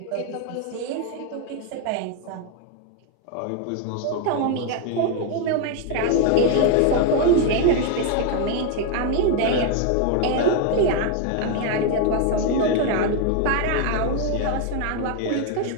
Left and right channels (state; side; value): different; both; correlation 0.01